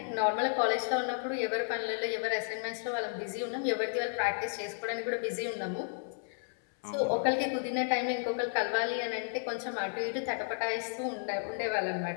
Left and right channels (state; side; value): silent; right; 56 dB below the other